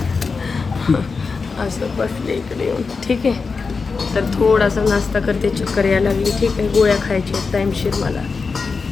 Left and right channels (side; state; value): right; quieter; 4.7 dB